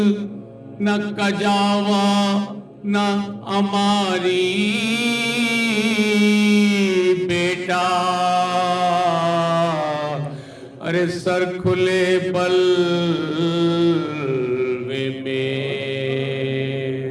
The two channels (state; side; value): identical; both; correlation 1.00